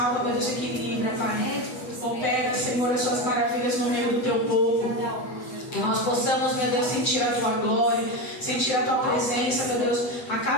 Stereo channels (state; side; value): late; right; 7.9 ms